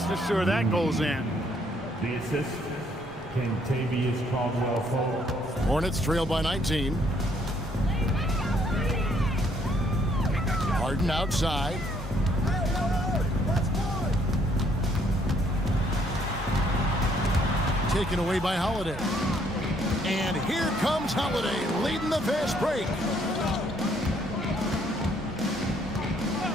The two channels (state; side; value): normal; both; correlation 0.67